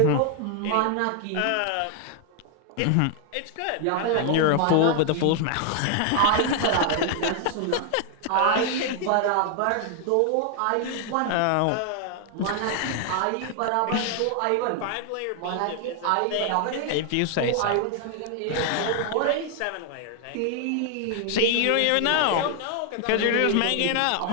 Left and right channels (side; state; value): both; different; correlation 0.00